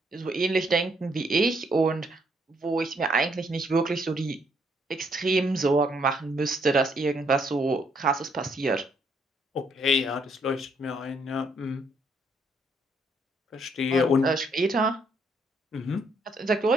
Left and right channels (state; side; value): normal; both; correlation 0.71